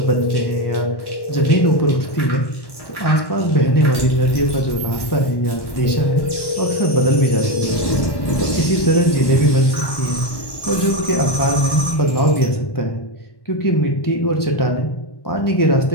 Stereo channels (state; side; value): late; right; 1.1 ms